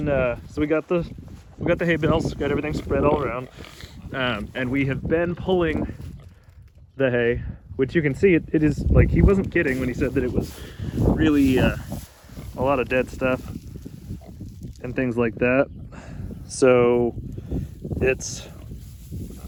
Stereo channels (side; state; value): both; identical; correlation 1.00